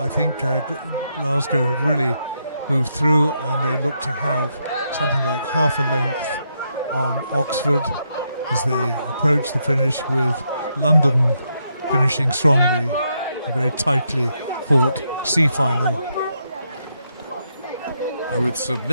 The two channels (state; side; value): inverted; both; correlation -0.80